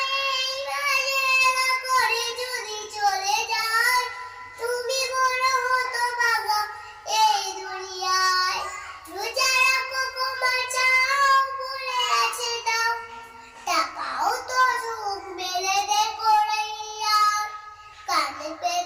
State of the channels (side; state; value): both; identical; correlation 1.00